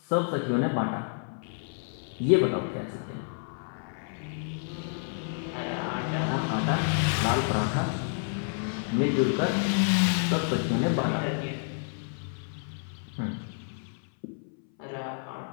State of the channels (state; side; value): silent; right; 58 dB below the other